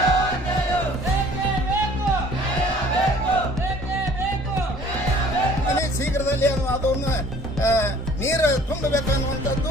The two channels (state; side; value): normal; both; correlation 0.52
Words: ಶೀಘ್ರದಲ್ಲಿ ಅದನ್ನು ನೀರು ತುಂಬಬೇಕು